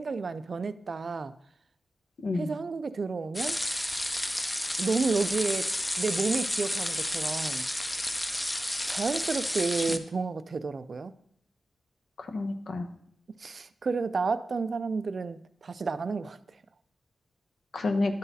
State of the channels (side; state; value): both; normal; correlation 0.94